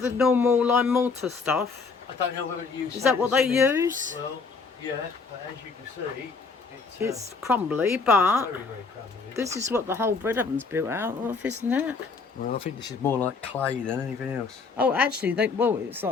normal lime mortar stuff? I don't know whether to use. Is that what they use? Well, yeah, but as you can see, It's crumbly, but very, very crumbly. this is what the whole bread oven's built out of, isn't it? Well, I think this is more like clay than anything else. Oh, actually, it's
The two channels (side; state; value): right; quieter; 4.6 dB